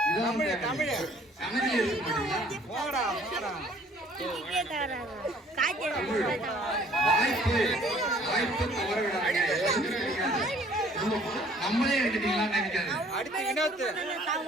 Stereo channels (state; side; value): normal; both; correlation 0.57